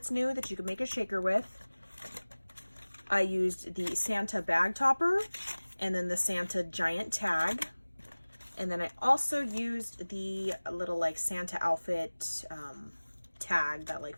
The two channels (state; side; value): inverted; both; correlation -1.00